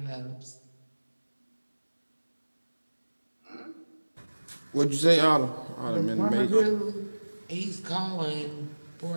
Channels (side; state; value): both; inverted; correlation -1.00